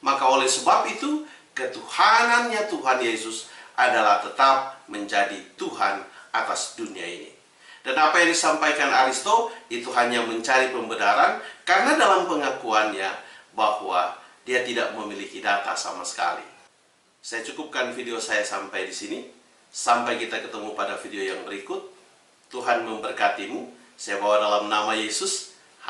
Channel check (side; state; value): both; identical; correlation 1.00